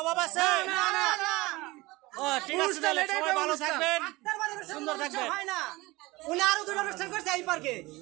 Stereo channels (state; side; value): quieter; left; 21.3 dB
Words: অভাব আছে? ও ঠিক আছে, তাহলে সবাই ভালো থাকবেন, সুন্দর থাকবেন। হয় না, উনি আরো দুটো অনুষ্ঠান করছে এই পার্কে,